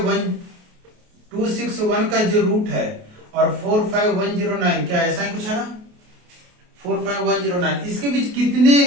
261 का जो रूट है और 45109, क्या ऐसा ही कुछ है ना, 45109, इसके बीच कितने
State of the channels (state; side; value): late; left; 28 ms